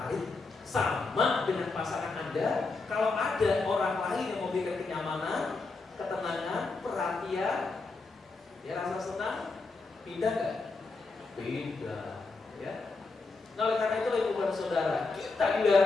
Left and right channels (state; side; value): quieter; right; 3.9 dB